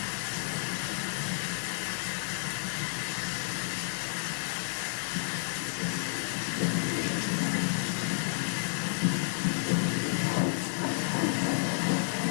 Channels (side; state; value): right; silent; 57 dB below the other